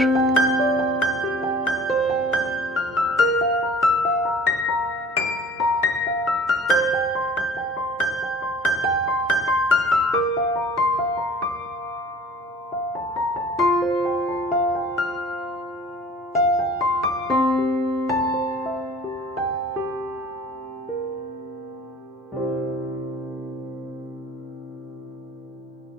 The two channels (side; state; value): both; normal; correlation 0.48